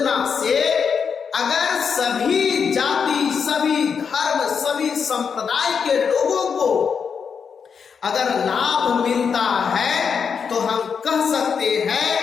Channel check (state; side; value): quieter; right; 6.3 dB